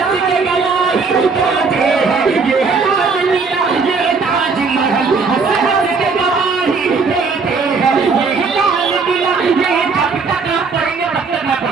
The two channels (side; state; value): left; quieter; 4.8 dB